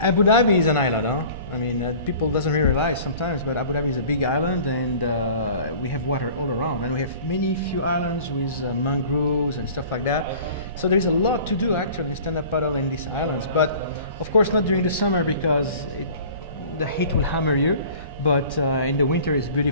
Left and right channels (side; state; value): both; inverted; correlation -0.46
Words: Abu Dhabi is an island, huh? I mean, people doesn't really realize sometimes, but Abu Dhabi is a big island, and we have water all around. And we have few islands with mangroves and stuff like that. So there is a lot to do actually in stand-up paddle in these islands. But of course not during the summer because the heat will hammer you. But in the winter it's